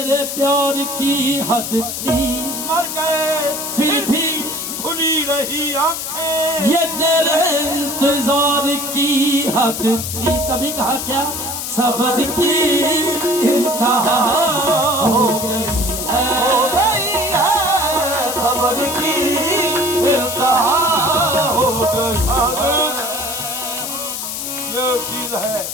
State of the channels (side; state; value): left; noise; hiss, 5 dB below the sound